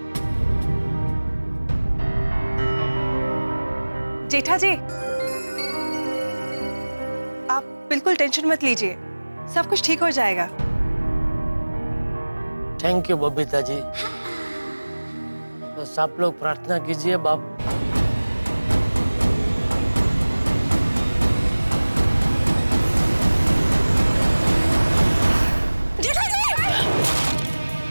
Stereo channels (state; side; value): inverted; both; correlation -1.00